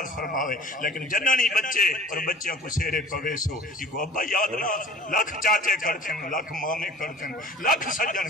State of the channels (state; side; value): normal; both; correlation 0.44